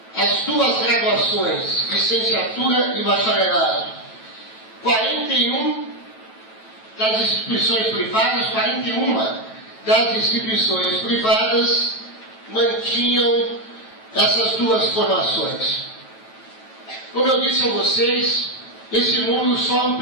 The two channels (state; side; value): late; right; 9.1 ms